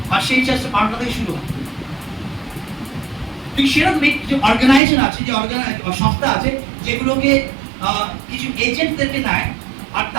আর সেই চার্চটা পাল্টা থেকে শুরু হয়। ঠিক সেরকম কিছু অর্গানাইজেশন আছে, যে সংস্থা আছে, যেগুলোকে কিছু এজেন্টদেরকে নেয়, আর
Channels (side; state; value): left; drops out; at 4.8 s